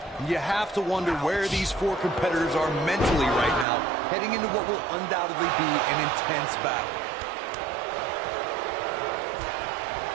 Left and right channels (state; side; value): drops out; left; at 3.7 s